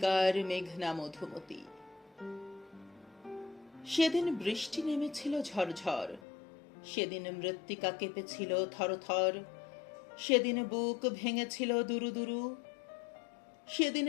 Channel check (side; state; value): right; drops out; at 6.2 s